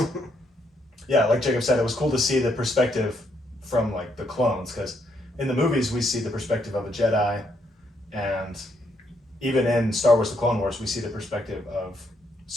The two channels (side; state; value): both; normal; correlation 0.75